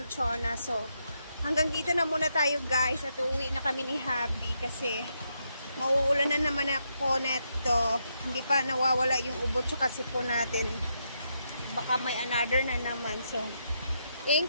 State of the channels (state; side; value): inverted; both; correlation -0.80